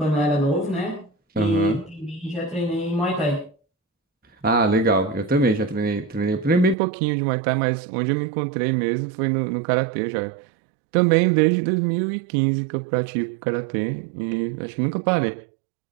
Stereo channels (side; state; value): left; drops out; at 6.8 s